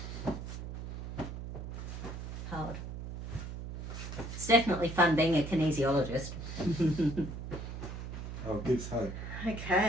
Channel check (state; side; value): noise; right; hum, 7 dB below the sound